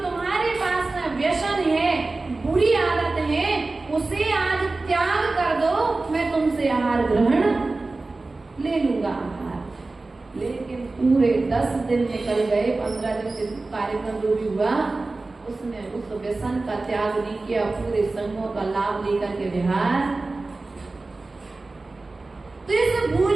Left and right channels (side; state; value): left; quieter; 3.4 dB